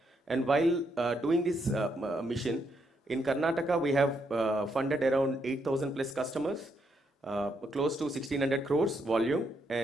And while doing this mission, in Karnataka, we have funded around 8,000 plus customers, close to 1,600 crores volume,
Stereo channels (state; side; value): normal; both; correlation 0.77